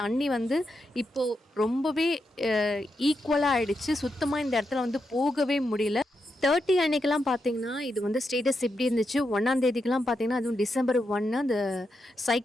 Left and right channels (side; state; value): both; normal; correlation 0.85